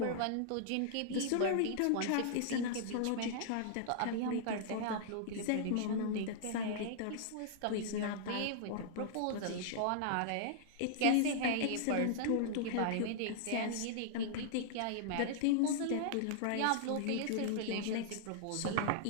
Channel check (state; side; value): different; both; correlation -0.01